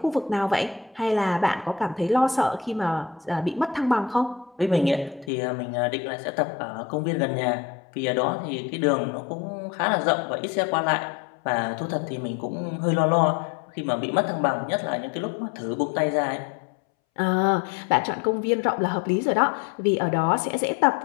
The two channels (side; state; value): right; drops out; at 5.3 s